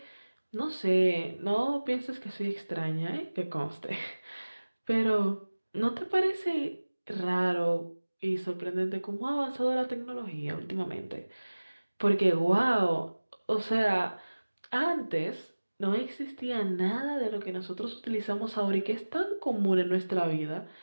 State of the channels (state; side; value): inverted; both; correlation -1.00